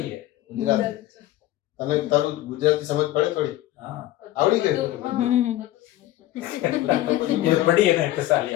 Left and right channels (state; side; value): quieter; right; 15.1 dB